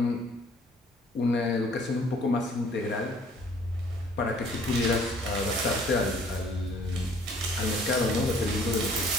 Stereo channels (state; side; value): normal; both; correlation 0.57